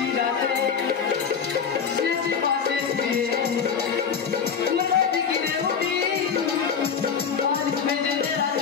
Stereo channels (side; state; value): right; quieter; 6.6 dB